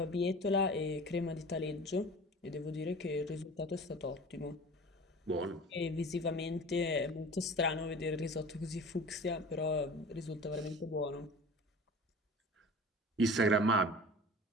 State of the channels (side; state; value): both; normal; correlation 0.39